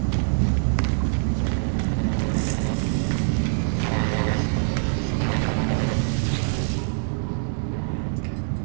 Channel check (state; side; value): silent; left; digital silence